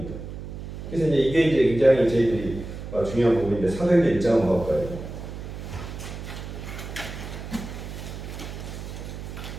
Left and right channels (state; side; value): noise; right; hum, 9 dB below the sound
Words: 그래서 이제 이게 굉장히 저희들이 중요한 부분인데 사도행전 1장 한번 가볼까요?